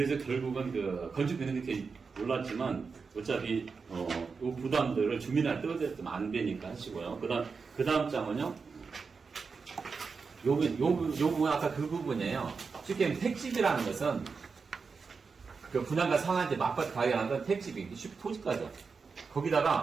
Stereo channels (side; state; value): left; quieter; 5.0 dB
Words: 결국은 건축비는 이렇게 올랐지만 어차피 이 부담들을 주민한테 떠들면 안 되니까 하시고요. 그 다음 장은요. 요 부분 아까 그 부분이에요. 쉽게 얘기하면 택집이라는 것은 그 분양가 상한제 맞바트 가격하는 건 택집이 쉽게 토지가죠.